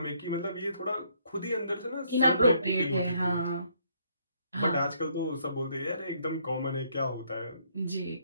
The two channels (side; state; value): both; inverted; correlation -0.68